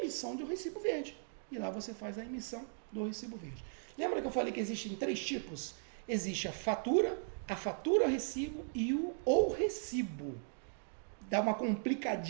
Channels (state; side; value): silent; left; digital silence